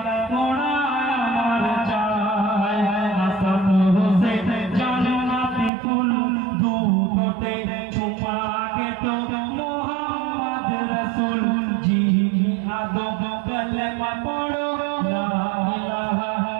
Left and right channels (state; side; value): drops out; left; at 5.7 s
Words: মোরা আমার চাই। হাসান হোসেন জান্নাতি ফুল দু ঠোঁটে চুমা গেত মোহাম্মদ রাসূল যিনি আদম কালেমা পড়ো লা ইলাহা